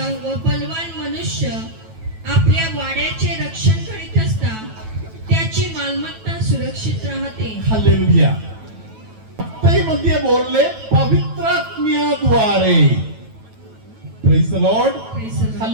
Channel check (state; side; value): late; left; 9.2 ms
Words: व बलवान मनुष्य आपल्या वाड्याचे रक्षण करीत असता त्याची मालमत्ता सुरक्षित राहते. हालेलुया. मध्ये बोलले पवित्र आत्म्याद्वारे. Praise the Lord. Praise the Lord.